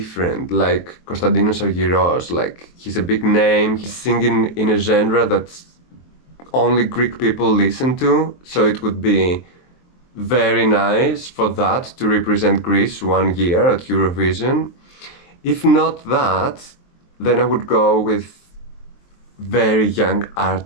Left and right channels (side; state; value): right; late; 23 ms